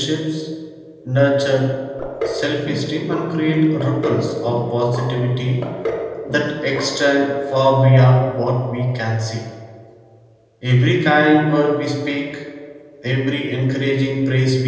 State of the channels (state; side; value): identical; both; correlation 1.00